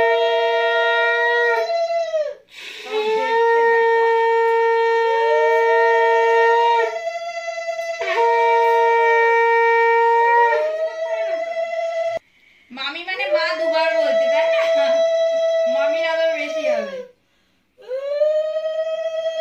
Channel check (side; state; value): both; identical; correlation 1.00